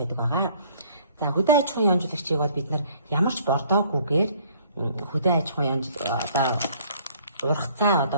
байгаа. За хөдөө аж ахуйн ионжуулагчийг бол бид нар ямар ч бордоогүйгээр хөдөө аж ахуйн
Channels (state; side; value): inverted; both; correlation -0.58